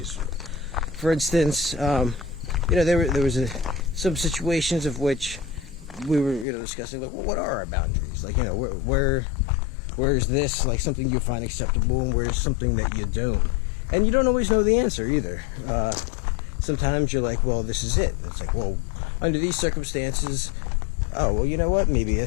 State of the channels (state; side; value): drops out; right; at 6.5 s